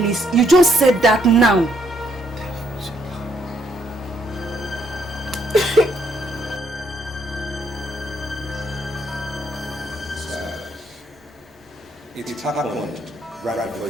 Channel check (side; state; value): both; normal; correlation 0.72